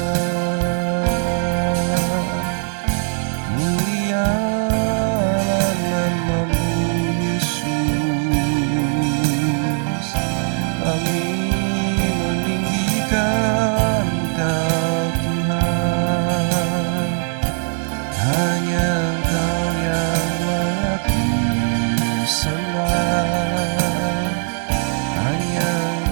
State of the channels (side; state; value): left; silent; 58 dB below the other